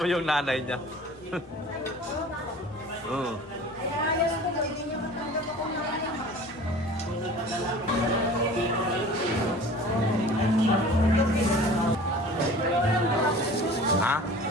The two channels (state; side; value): normal; both; correlation 0.43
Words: yung nanay niya. Ha?